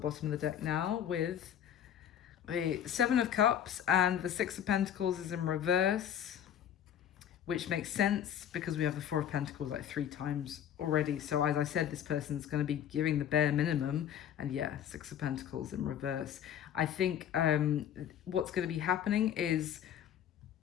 of the deck now, with the Seven of Cups, and the Six of Pentacles is in reverse, which makes sense because we have the Four of Pentacles like 3 times already. So as I said, this person's going to be giving the bare minimum. And yeah, Six of Pentacles in reverse. I think what's going to be happening is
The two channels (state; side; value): quieter; right; 9.7 dB